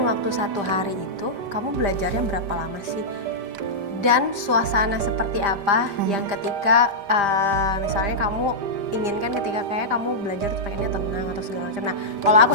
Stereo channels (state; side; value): late; left; 5.0 ms